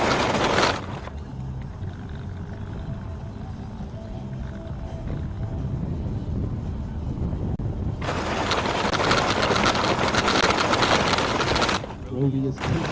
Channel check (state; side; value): identical; both; correlation 1.00